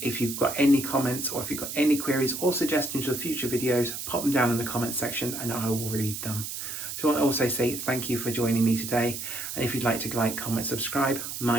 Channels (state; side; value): noise; right; hiss, 6 dB below the sound